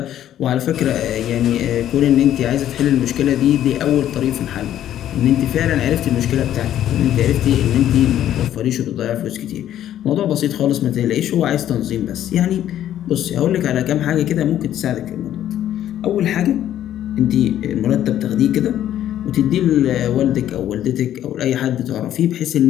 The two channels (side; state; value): right; quieter; 11.6 dB